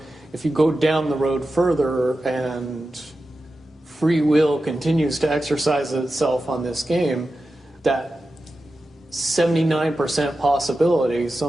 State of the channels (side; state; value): both; normal; correlation 0.92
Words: if you go down the road further and free will continues to exercise itself on this game, that 79% possibility